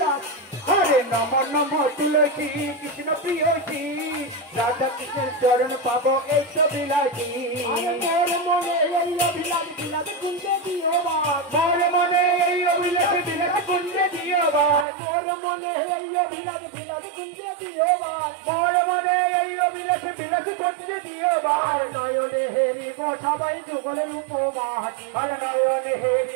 হরে নম নম তুলসী কৃষ্ণ প্রিয়সী রাধা কৃষ্ণের চরণ পাবো এই অভিলাষী মোর মনে এই অভিলাষ বিলাস কুঞ্জে দিও মোর মনে এই অভিলাষ বিলাস কুঞ্জে দিও মোর মনে এই অভিলাষ বিলাস কুঞ্জে দিও মোর মনে এই অভিলাষ বিলাস কুঞ্জে দিও নয়নে হেরিব সবাই যুগলের উপবাস আরে নয়নে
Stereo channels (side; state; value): left; drops out; at 14.9 s